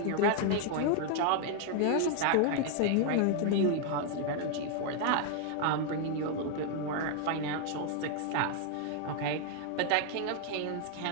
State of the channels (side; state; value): both; different; correlation 0.00